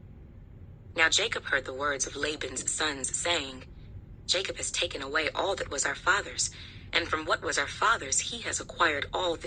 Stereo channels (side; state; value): both; identical; correlation 1.00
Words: Now Jacob heard the words of Laban's sons, saying, Jacob has taken away all that was our father's, and from what was our father's he has acquired all